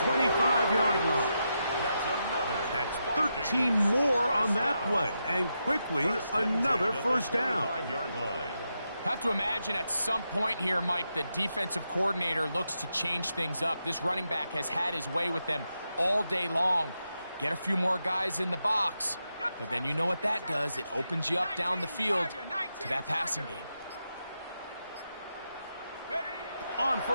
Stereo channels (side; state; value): both; inverted; correlation -0.85